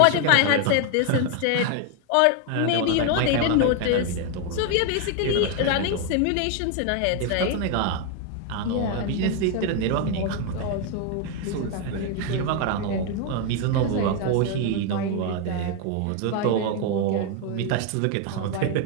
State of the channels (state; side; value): different; both; correlation 0.01